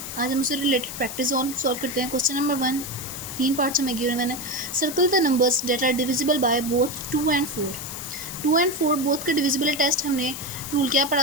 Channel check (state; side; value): noise; left; hiss, 9 dB below the sound